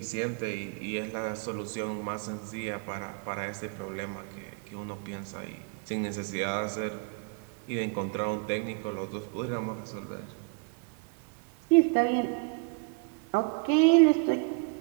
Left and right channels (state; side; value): quieter; left; 34.0 dB